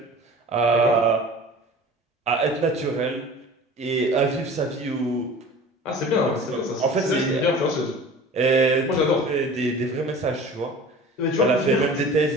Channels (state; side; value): normal; both; correlation 0.41